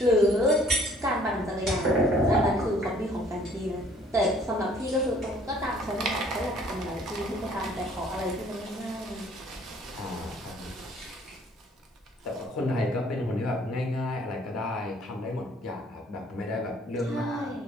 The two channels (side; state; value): both; normal; correlation 0.58